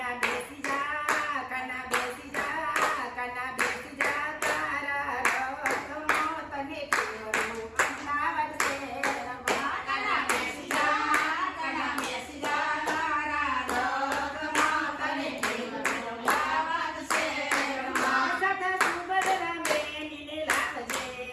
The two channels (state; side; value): identical; both; correlation 1.00